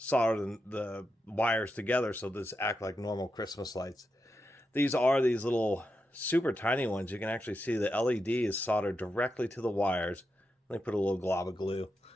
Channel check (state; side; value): normal; both; correlation 0.87